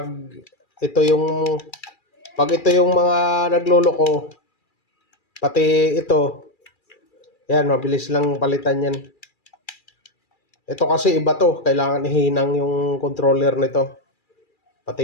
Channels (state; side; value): late; right; 2.4 ms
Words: ito yung pag ito yung mga nagloloko, pati ito, yan, mabilis lang palitan yan. Ito kasi iba to, kailangan ihinang yung controller nito.